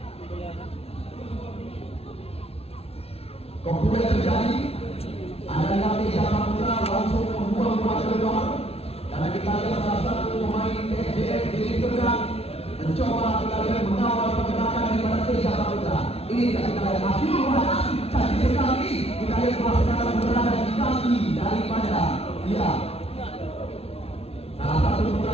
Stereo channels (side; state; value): right; late; 0.29 ms